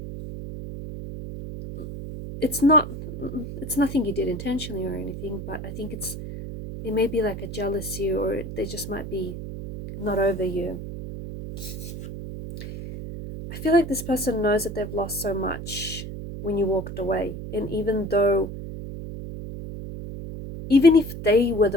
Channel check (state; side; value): noise; right; hum, 8 dB below the sound